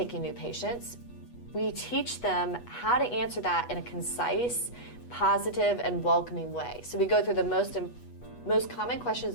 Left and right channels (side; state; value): right; late; 8.2 ms